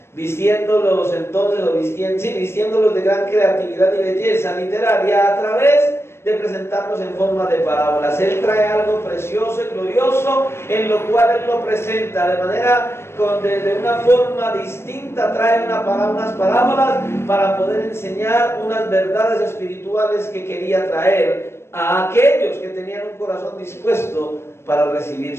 vistiéndolos de gran creatividad y belleza literaria a través de presentarnos en forma de parábolas. Él trae algo precioso y glorioso en lo cual Él lo presenta de manera, de una forma distinta, trae unas parábolas para poder enseñar unas verdades espirituales que quería traer a aquellos que tenían un corazón dispuesto para recibir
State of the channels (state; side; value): late; right; 0.12 ms